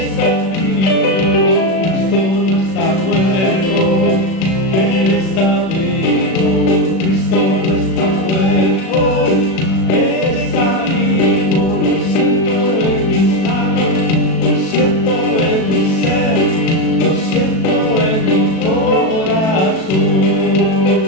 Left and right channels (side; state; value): right; late; 37 ms